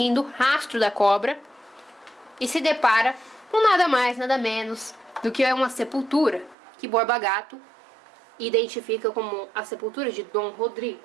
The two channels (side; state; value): left; drops out; at 6.6 s